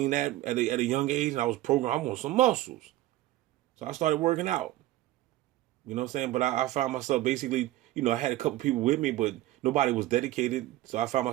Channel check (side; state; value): left; quieter; 16.1 dB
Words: that at a young age, and I was programmed. I want some muscles, so I started working out. You know what I'm saying? But I found myself basically, I had a couple people with me, but nobody was dedicated. So I found